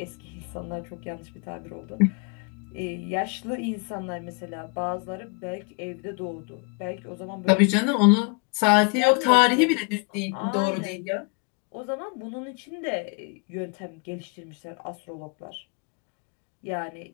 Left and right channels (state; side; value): quieter; right; 33.3 dB